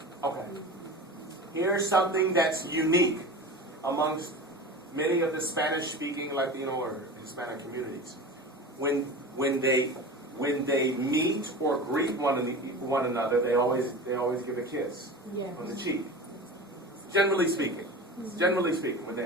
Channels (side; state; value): both; normal; correlation 0.32